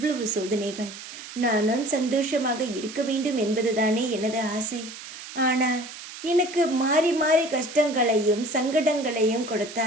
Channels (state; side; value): noise; right; hiss, 13 dB below the sound